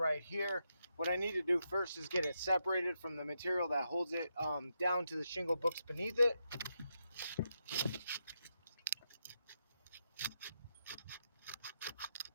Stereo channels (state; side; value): inverted; both; correlation -0.83